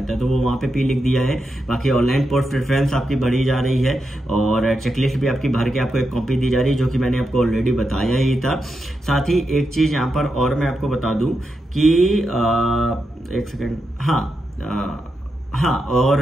है। तो वो वहाँ पे पी लिख दिया है। बाकी ऑनलाइन पोस्ट प्रेफरेंस आपकी बढ़ी जा रही है और चेकलिस्ट भी आपकी भर के आपको एक कॉपी दी जा रही है, जो कि मैंने आपको ऑलरेडी बताया ही था। साथ ही एक चीज यहाँ पर और मैं आपको बता दूं कि एक सेकेंड, हाँ,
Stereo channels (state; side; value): normal; both; correlation 0.86